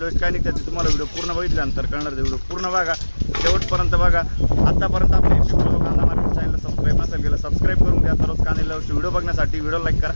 काय नाही, त्याची तुम्हाला व्हिडिओ पूर्ण बघितल्यानंतर कळणार। व्हिडिओ पूर्ण बघा, शेवटपर्यंत बघा। आतापर्यंत आपल्या पिंपळगाव कांदा मार्केट चॅनलला सबस्क्राईब नसेल केलं सबस्क्राईब करून घ्या। दररोज कांद्याला व्हिडिओ बघण्यासाठी व्हिडिओ लाईक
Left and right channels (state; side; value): inverted; both; correlation -1.00